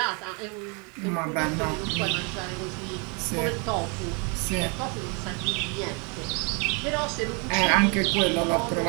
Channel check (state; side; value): quieter; left; 33.9 dB